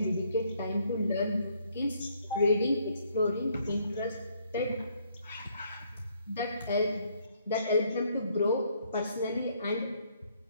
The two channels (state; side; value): inverted; both; correlation -0.68